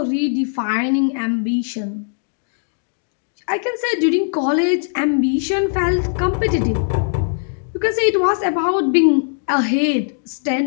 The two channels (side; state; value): right; silent; digital silence